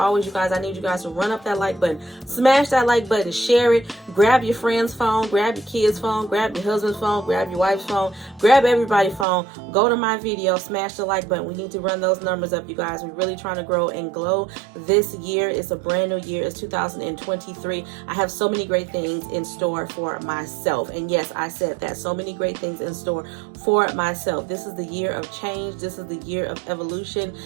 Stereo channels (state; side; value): drops out; left; at 9.2 s